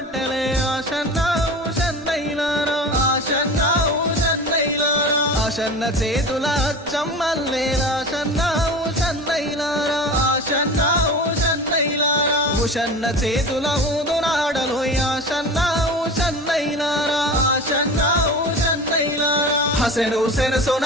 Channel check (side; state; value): both; normal; correlation 0.33